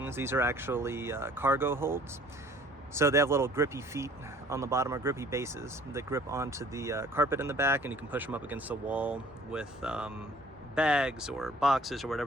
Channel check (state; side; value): normal; both; correlation 0.54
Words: These are actually cargo holds. So they have little grippy feet on the bottom, or grippy bases that grip onto the carpet in the back, and you can push them up against the wall with bags or boxes or